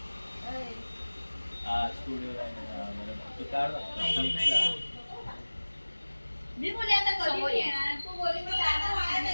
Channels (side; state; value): both; inverted; correlation -1.00